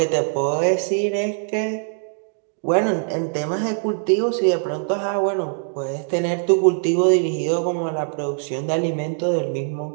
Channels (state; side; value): silent; left; digital silence